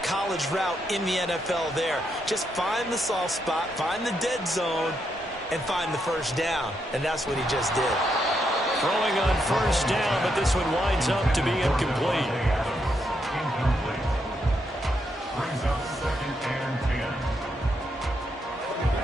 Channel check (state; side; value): normal; both; correlation 0.80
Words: college route in the NFL there. Just find the soft spot, find the dead zone, and find the first down. And that's what he just did. Throwing on first down, but this one winds up to be incomplete. Brings up 2nd and